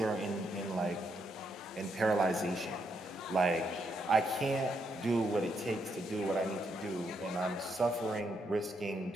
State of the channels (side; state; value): both; normal; correlation 0.78